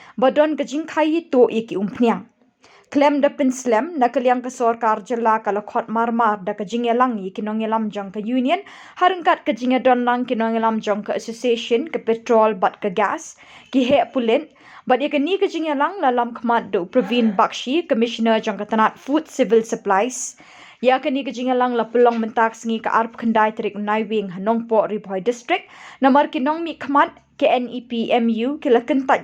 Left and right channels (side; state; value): both; identical; correlation 1.00